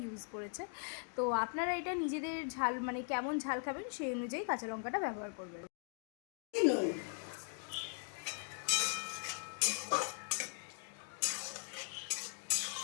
ইউজ করেছে। তো আপনারা এটা নিজেদের ঝাল কেমন ঝাল খাবেন সেই অনুযায়ী কাঁচা লঙ্কাটা ব্যবহার করবেন।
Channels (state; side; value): silent; right; 51 dB below the other